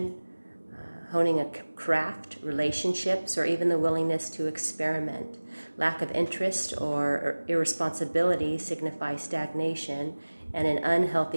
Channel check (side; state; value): both; inverted; correlation -1.00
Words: honing a craft, relationships, or even the willingness to experiment. Lack of interest or irresponsibility signify stagnation and an